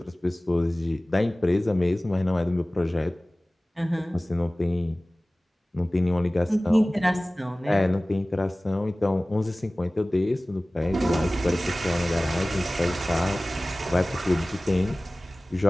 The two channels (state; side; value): normal; both; correlation 0.98